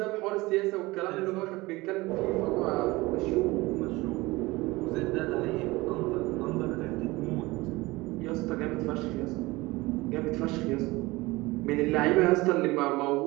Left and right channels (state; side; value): quieter; left; 21.3 dB